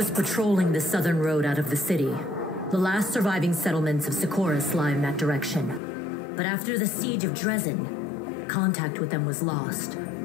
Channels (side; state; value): right; drops out; at 5.8 s